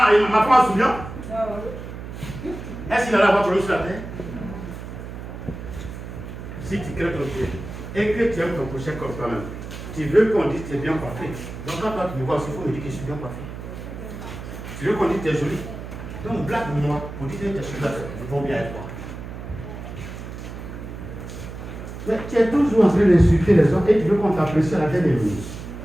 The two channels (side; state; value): right; noise; hum, 10 dB below the sound